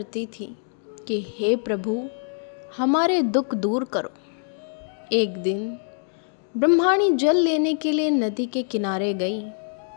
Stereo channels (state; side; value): silent; right; digital silence